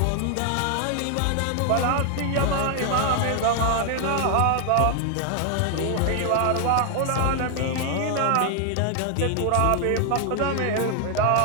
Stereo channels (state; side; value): different; both; correlation 0.00